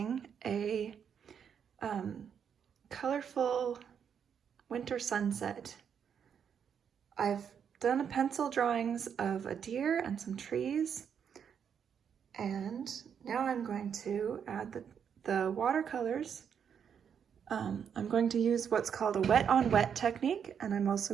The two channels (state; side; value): quieter; left; 7.7 dB